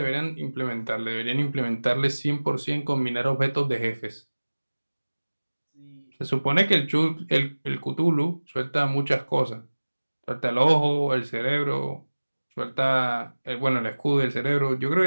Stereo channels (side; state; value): both; inverted; correlation -1.00